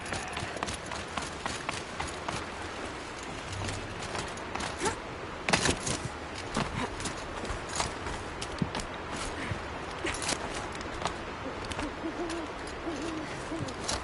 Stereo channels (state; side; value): identical; both; correlation 1.00